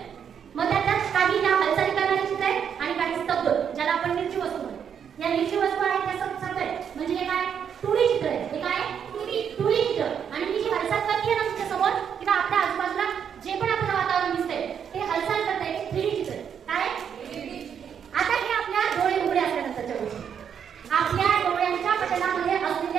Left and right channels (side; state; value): left; quieter; 7.9 dB